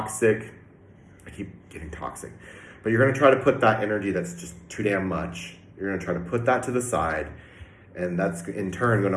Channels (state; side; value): identical; both; correlation 1.00